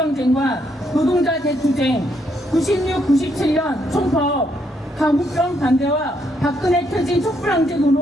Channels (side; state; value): both; normal; correlation 0.74